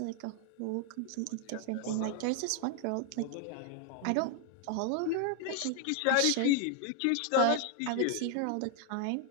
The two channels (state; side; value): different; both; correlation 0.00